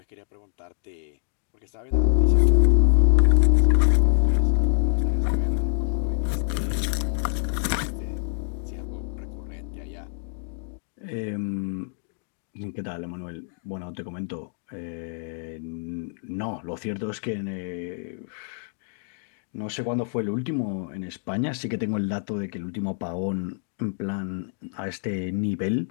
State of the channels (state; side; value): silent; right; digital silence